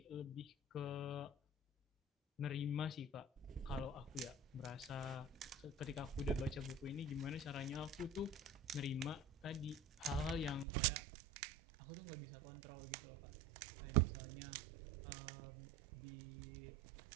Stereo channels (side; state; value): left; drops out; at 10.7 s